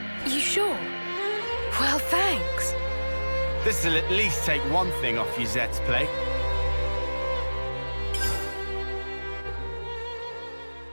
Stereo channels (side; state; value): both; inverted; correlation -1.00